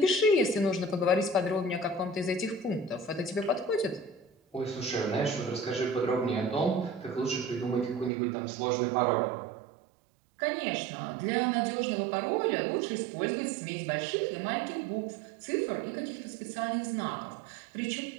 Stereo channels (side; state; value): left; drops out; at 8.1 s